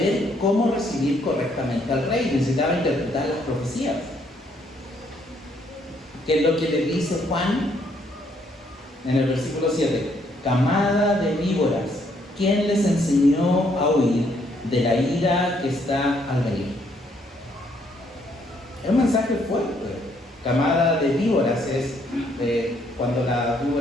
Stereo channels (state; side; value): normal; both; correlation 0.69